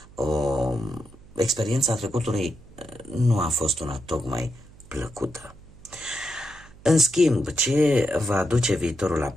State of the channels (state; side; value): noise; right; hum, 23 dB below the sound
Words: experiența trecutului, nu a fost una tocmai plăcută. În schimb, ce va aduce viitorul